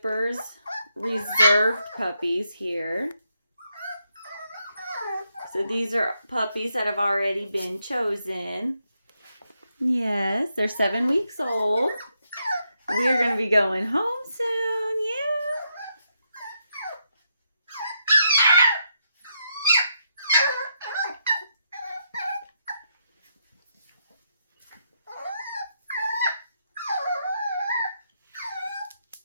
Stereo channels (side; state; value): both; inverted; correlation -0.80